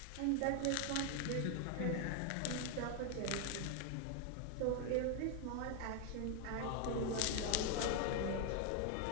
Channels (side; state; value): both; different; correlation 0.01